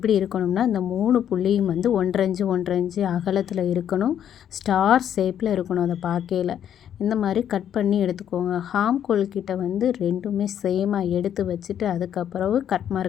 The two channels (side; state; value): right; quieter; 9.7 dB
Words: இருக்கணும்னா இந்த 3 புள்ளியும் வந்து 1.5 இன்ச்சு 1.5 இன்ச்சு அகலத்தில் இருக்கணும். ஸ்டார் ஷேப்பில் இருக்கணும். அதை பார்க்கையில் இந்த மாதிரி கட் பண்ணி எடுத்துக்கோங்க. ஹாம்கோல் கிட்ட வந்து ரெண்டுமே சேமாக எடுத்து வச்சுட்டு அதுக்கப்புறம் கட்